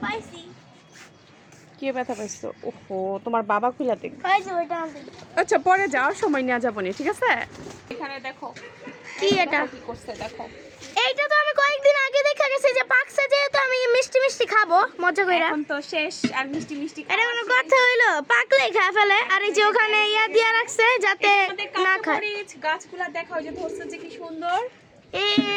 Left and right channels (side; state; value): both; identical; correlation 1.00